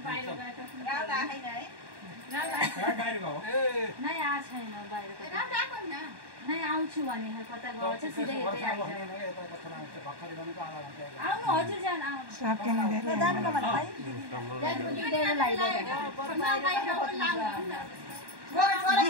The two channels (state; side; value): late; left; 1.1 ms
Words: बाहिर गएको गाउँ राखेन है। बाहिर गयो नै आएको छैन बाहिरको राम राखौँ न नै आउँछु भने कता गयो चाहिँ सिधै यतै आइज आउनु हजुर जान आउनु सकेन जानुको भने भाइ